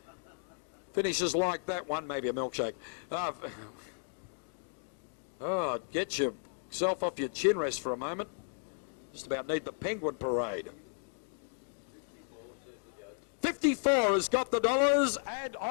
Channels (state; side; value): silent; right; digital silence